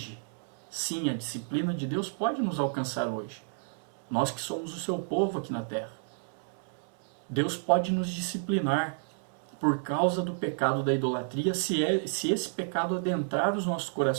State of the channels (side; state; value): left; silent; 57 dB below the other